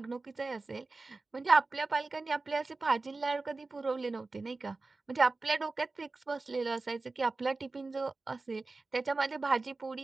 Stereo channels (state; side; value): quieter; left; 3.6 dB